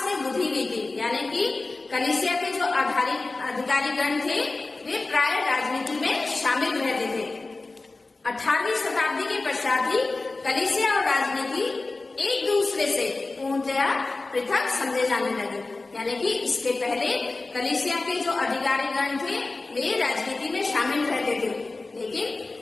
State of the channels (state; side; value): quieter; right; 3.4 dB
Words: में बुझी हुई थी, यानी कि कलीसिया के जो अधिकारीगण थे वे प्राय राजनीति में शामिल रहते थे। 18वीं शताब्दी के पश्चात ही कलीसिया और राजनीति एक दूसरे से पूर्णतया पृथक समझे जाने लगे। यानी कि इसके पहले कलीसिया के जो अधिकारीगण थे वे राजनीति में शामिल रहते थे, लेकिन